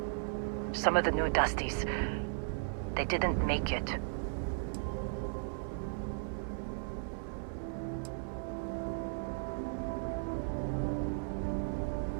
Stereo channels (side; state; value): left; silent; 54 dB below the other